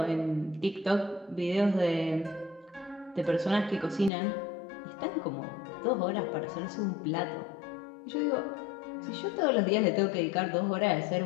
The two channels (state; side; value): drops out; right; at 4.1 s